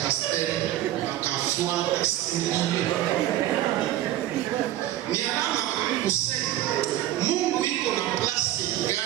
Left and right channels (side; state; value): left; quieter; 13.8 dB